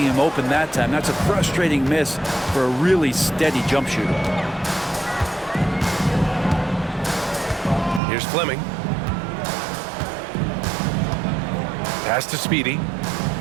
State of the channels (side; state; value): left; drops out; at 8.0 s